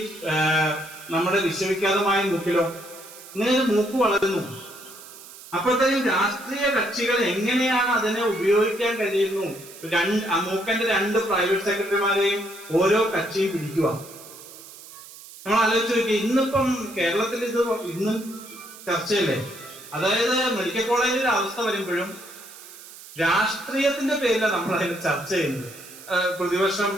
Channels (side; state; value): right; noise; hiss, 17 dB below the sound